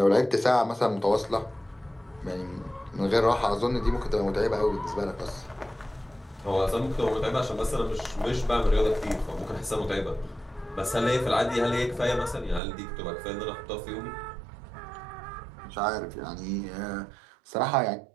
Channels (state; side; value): drops out; left; at 12.6 s